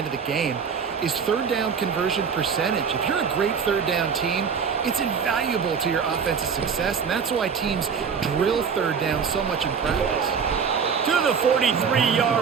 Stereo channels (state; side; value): quieter; left; 6.4 dB